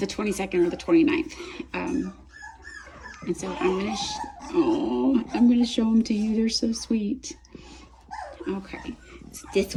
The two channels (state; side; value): identical; both; correlation 1.00